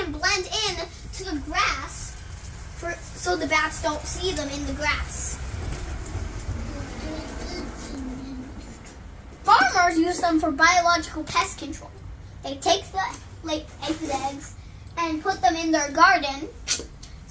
blend in to the grass, so the bats don't see them in the grass. Farmers use them for biological pest control. They take the eggs and put them in their garden.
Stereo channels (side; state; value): both; identical; correlation 1.00